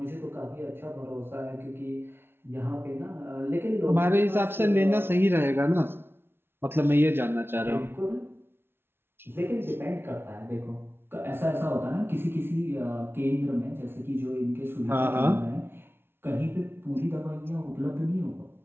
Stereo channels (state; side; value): late; left; 0.11 ms